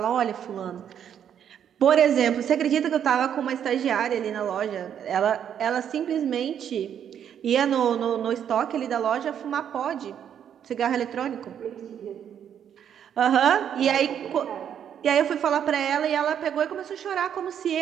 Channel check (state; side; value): quieter; left; 9.0 dB